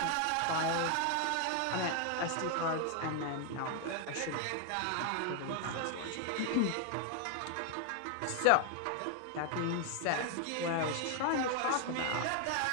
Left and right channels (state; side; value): different; both; correlation 0.00